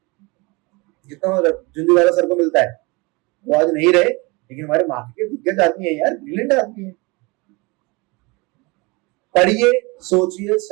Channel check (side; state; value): left; quieter; 26.3 dB